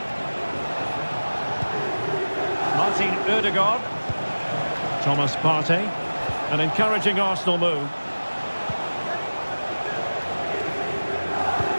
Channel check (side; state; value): both; inverted; correlation -1.00